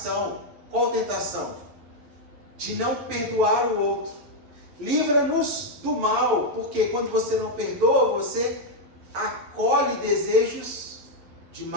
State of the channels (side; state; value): left; late; 11 ms